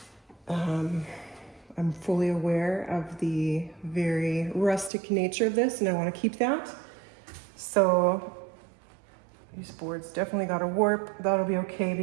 I'm fully aware of the very rustic nature of this, and I want to keep that. So these boards definitely got a warp. That'll be okay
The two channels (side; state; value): left; drops out; at 4.9 s